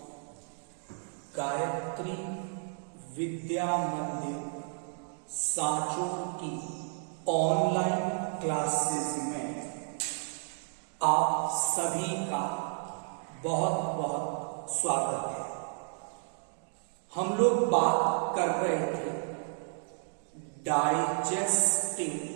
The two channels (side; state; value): left; silent; 56 dB below the other